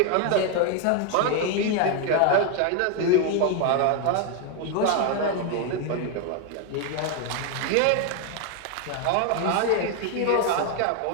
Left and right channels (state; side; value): different; both; correlation 0.01